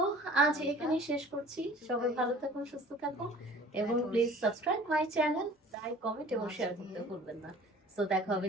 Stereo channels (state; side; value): normal; both; correlation 0.47